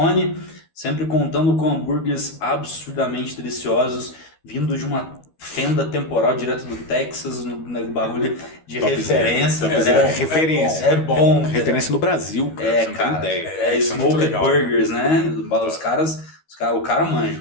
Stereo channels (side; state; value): right; late; 12 ms